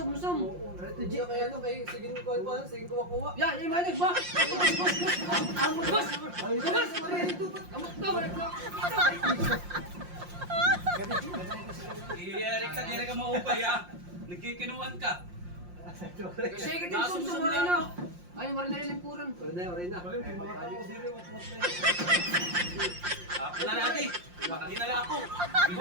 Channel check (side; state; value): left; late; 5.7 ms